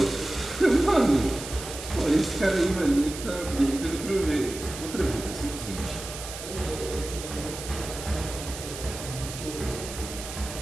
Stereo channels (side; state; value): right; noise; hiss, 10 dB below the sound